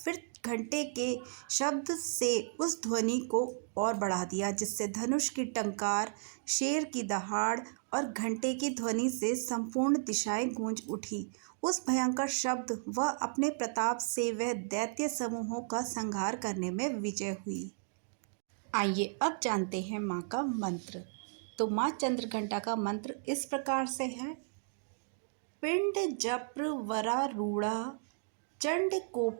घंटे के शब्द से उस ध्वनि को और बढ़ा दिया, जिससे धनुष की टंकार, शेर की दहाड़ और घंटे की ध्वनि से संपूर्ण दिशाएं गूंज उठी। उस भयंकर शब्द व अपने प्रताप से वह दैत्य समूहों का संहार करने में विजय हुई। आइए अब जानते हैं माँ का मंत्र। तो माँ चंद्रघंटा का मंत्र इस प्रकार से है। पिंड जप्र वरारूढ़ा चंड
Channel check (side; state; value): left; silent; digital silence